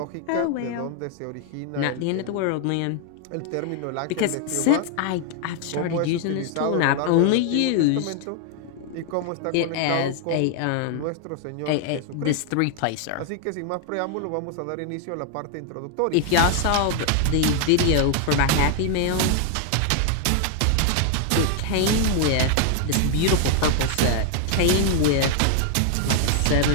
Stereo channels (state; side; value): different; both; correlation 0.00